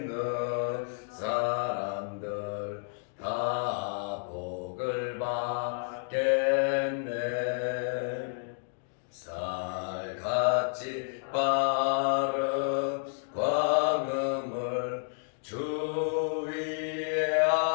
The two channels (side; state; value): right; silent; digital silence